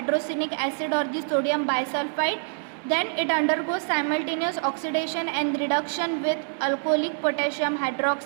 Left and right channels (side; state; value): left; silent; digital silence